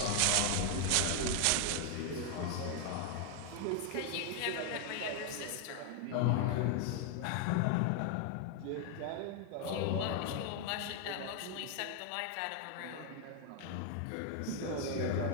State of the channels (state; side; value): different; both; correlation 0.00